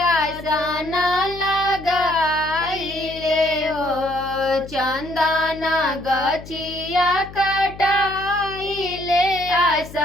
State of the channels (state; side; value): noise; left; hum, 15 dB below the sound